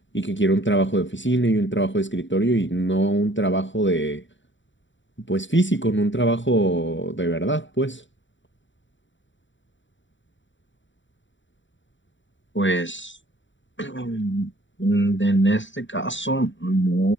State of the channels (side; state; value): right; late; 0.54 ms